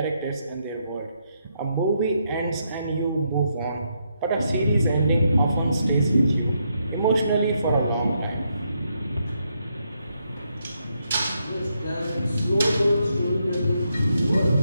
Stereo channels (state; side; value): inverted; both; correlation -0.79